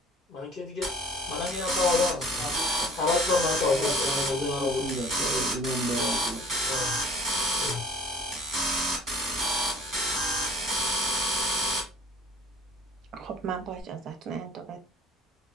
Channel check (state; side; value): normal; both; correlation 0.49